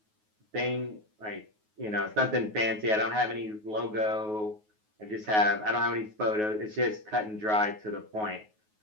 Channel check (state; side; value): late; left; 9.4 ms